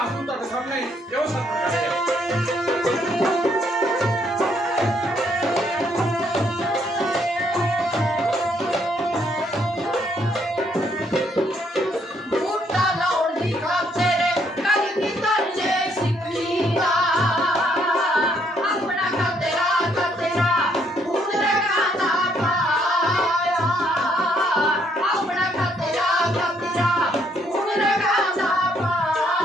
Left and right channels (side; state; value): both; normal; correlation 0.70